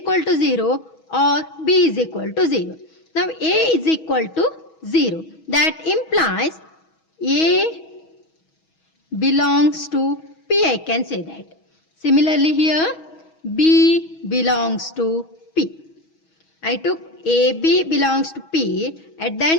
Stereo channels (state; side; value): late; right; 6.2 ms